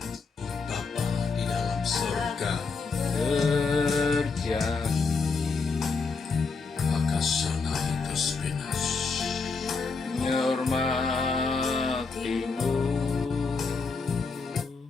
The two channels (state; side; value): quieter; right; 4.5 dB